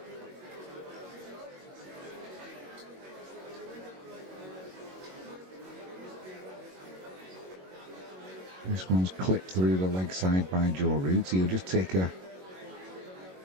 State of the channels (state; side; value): late; left; 22 ms